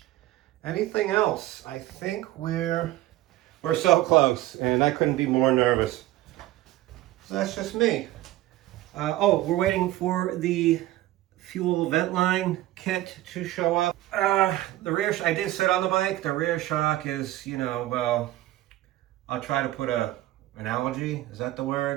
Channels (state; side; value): quieter; left; 15.9 dB